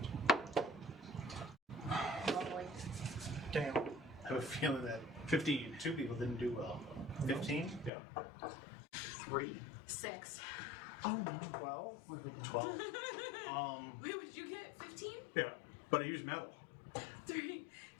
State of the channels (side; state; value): right; drops out; at 7.9 s